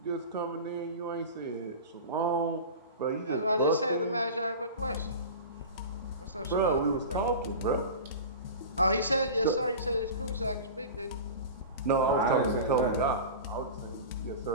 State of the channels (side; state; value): both; inverted; correlation -0.32